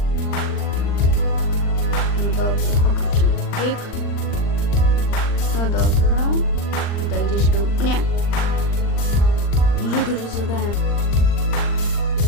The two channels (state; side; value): late; right; 39 ms